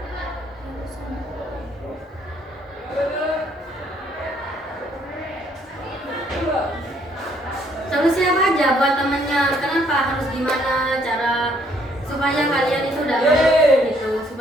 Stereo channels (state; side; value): normal; both; correlation 0.66